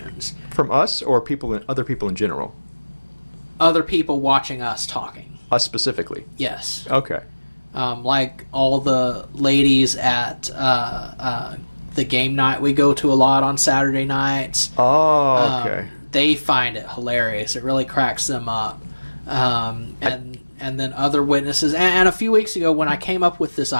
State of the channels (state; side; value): inverted; both; correlation -1.00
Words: From us or other people in general? Other people watching us talking. Us specifically? Yes. Okay. Like all the ladies at the game night we go to a lot on Saturday nights. Oh, okay. They find it hilarious. It really cracks them up. And then other witnesses. And a few weeks ago when I came up with this